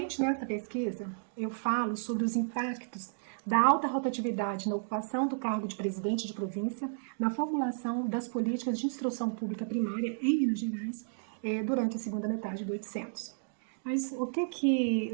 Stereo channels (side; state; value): left; silent; digital silence